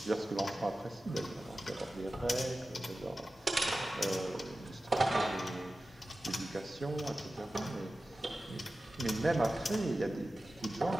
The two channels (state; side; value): normal; both; correlation 0.95